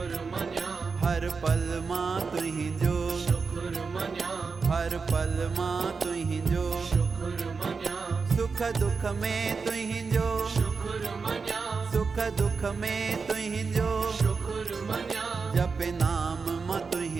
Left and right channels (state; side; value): quieter; left; 4.9 dB